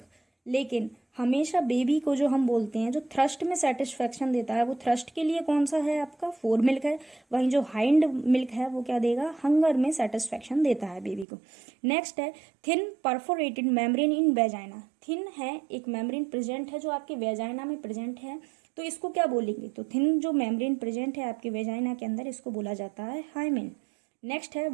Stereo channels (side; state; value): left; drops out; at 11.2 s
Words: लेकिन हमेशा बेबी को जो हम बोलते हैं जो थ्रस्ट में सेटिस्फेक्शन देता है, वो थ्रस्ट के लिए कौन सा है आपका, फोर मिल्क है। वहीं जो हाइंड मिल्क है वो क्या देगा, हंगर में सेटिस्फेक्शन देता है बेबी को। नेक्स्ट है thin perforated membrane in vagina, thin है एक मेम्ब्रेन प्रेजेंट है जो आपके वेजाइना में प्रेजेंट है, तो इसको क्या बोलेंगे, तो थिन जो मेम्ब्रेन प्रेजेंट है आपके वेजाइना के अंदर, इसको बोला जाता है हाइमेन। नेक्स्ट है